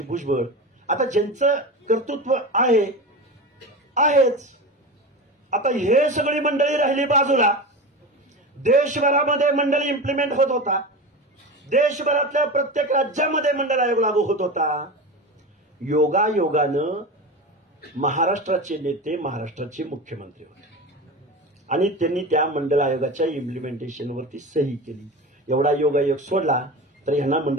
भुजबळ. आता ज्यांचं कर्तृत्व आहेच. आता हे सगळी मंडळी राहिली बाजूला. देशभरामध्ये मंडळ इम्प्लिमेंट होत होता. देशभरातल्या प्रत्येक राज्यामध्ये मंडळ आयोग लागू होत होता. योगायोगानं महाराष्ट्राचे नेते महाराष्ट्राचे मुख्यमंत्री होते. आणि त्यांनी त्या मंडळ आयोगाच्या इम्प्लिमेंटेशनवरती सही केली. एवढा योगायोग सोडला तर ह्यांना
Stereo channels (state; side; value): normal; both; correlation 0.27